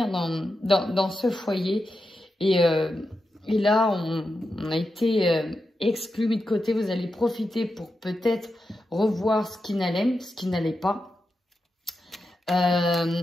dans ce foyer. Et là, on a été exclu, mis de côté. Vous allez profiter pour peut-être revoir ce qui n'allait pas.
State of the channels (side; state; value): both; normal; correlation 0.89